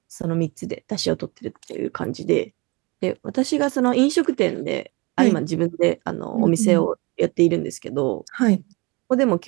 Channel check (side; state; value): left; quieter; 26.5 dB